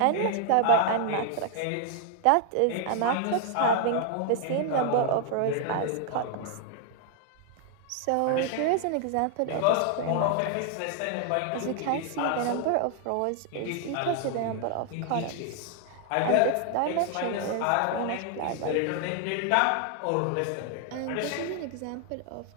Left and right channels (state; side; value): different; both; correlation 0.00